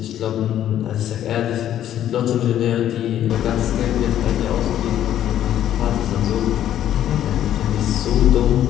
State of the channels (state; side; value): quieter; right; 11.3 dB